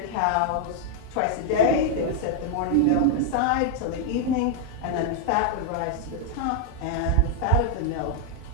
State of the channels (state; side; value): different; both; correlation 0.00